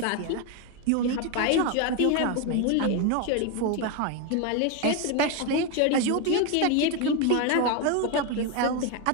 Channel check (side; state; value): both; different; correlation 0.02